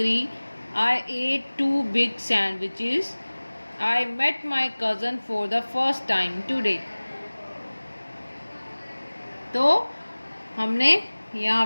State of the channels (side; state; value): both; inverted; correlation -1.00